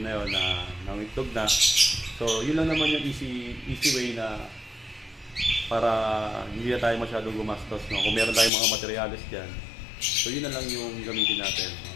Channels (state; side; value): drops out; right; at 8.5 s